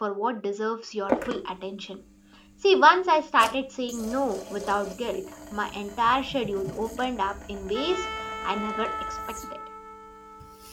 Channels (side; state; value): both; identical; correlation 1.00